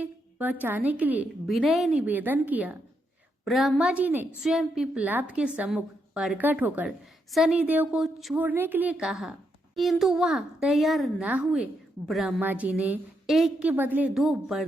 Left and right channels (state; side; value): normal; both; correlation 0.80